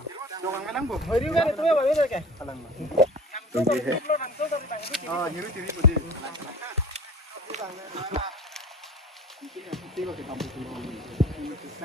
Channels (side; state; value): both; normal; correlation 0.41